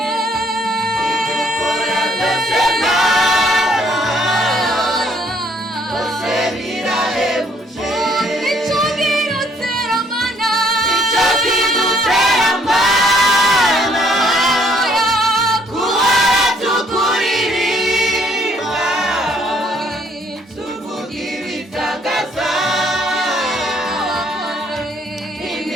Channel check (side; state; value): both; normal; correlation 0.65